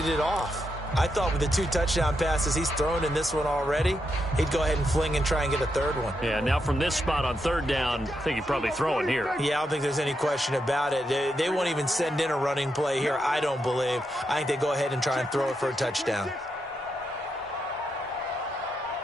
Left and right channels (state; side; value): normal; both; correlation 0.83